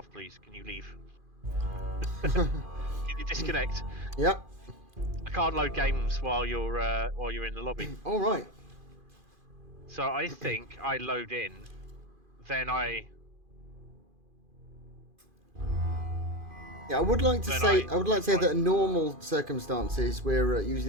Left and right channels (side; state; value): left; late; 2.5 ms